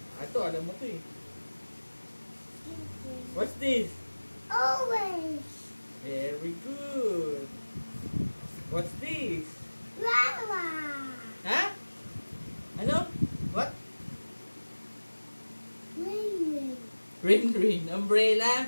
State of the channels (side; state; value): both; inverted; correlation -1.00